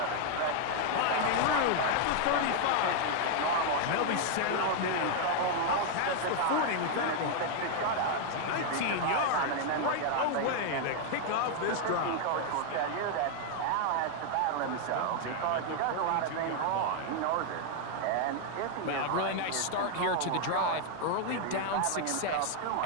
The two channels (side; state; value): both; different; correlation 0.00